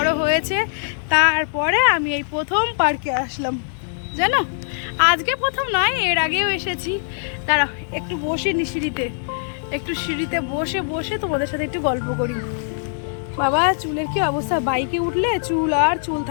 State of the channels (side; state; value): right; silent; digital silence